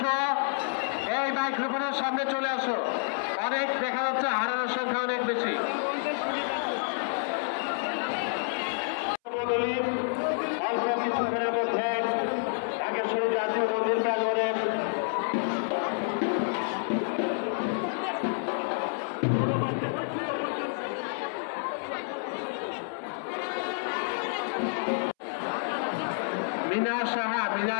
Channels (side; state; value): right; silent; 59 dB below the other